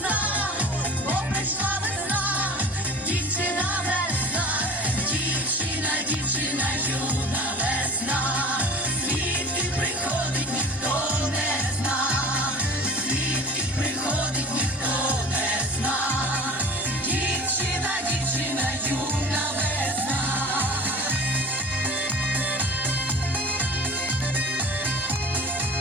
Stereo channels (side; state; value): both; normal; correlation 0.41